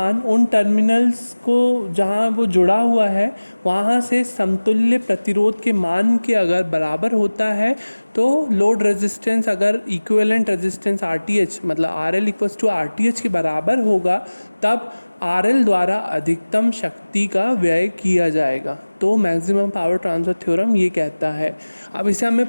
उन टर्मिनल्स को जहाँ वो जुड़ा हुआ है वहाँ से समतुल्य प्रतिरोध के मान के अगर बराबर होता है तो लोड रेजिस्टेंस अगर इक्विवेलेंट रेजिस्टेंस RTH मतलब RL इक्वल्स टू RTH के बराबर होगा तब RL द्वारा अधिकतम शक्ति का व्यय किया जाएगा। तो मैक्सिमम पावर ट्रांसफ़र थ्योरम ये कहता है। अब इसे हमें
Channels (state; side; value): inverted; both; correlation -1.00